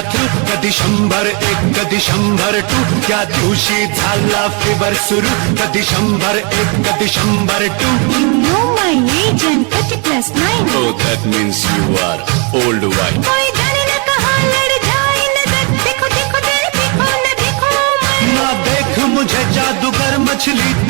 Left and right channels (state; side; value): quieter; left; 34.4 dB